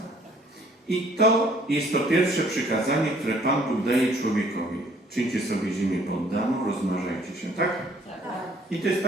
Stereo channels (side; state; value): both; normal; correlation 0.59